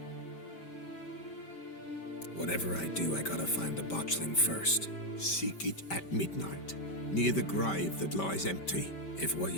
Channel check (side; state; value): right; late; 5.2 ms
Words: Whatever I do, I gotta find the botchling first. Seek it at midnight, near the grave that lies empty. If what